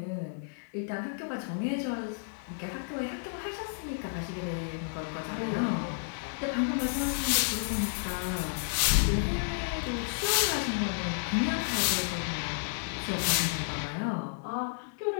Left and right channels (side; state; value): right; silent; 57 dB below the other